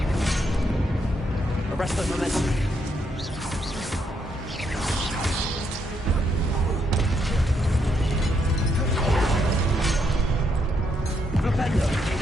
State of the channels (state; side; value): normal; both; correlation 0.76